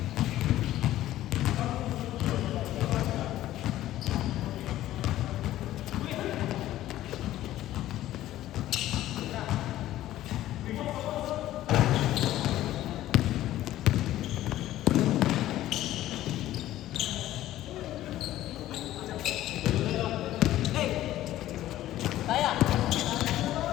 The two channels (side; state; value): right; quieter; 14.1 dB